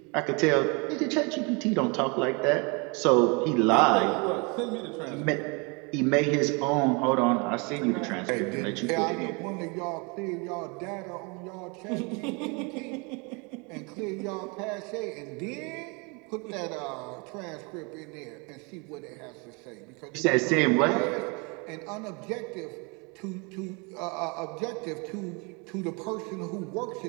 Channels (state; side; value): quieter; left; 31.0 dB